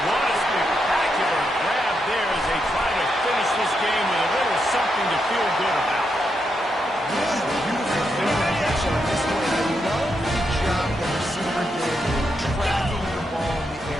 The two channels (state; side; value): normal; both; correlation 0.82